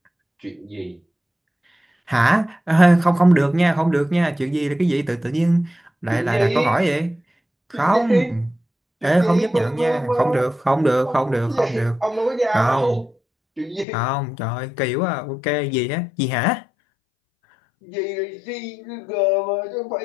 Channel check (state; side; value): drops out; right; at 13.9 s